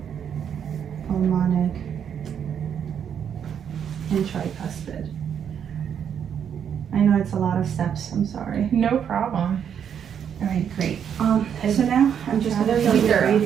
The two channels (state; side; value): quieter; left; 8.3 dB